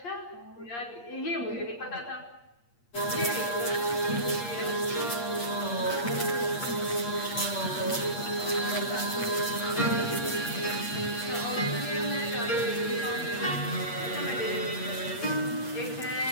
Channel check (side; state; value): right; late; 8.5 ms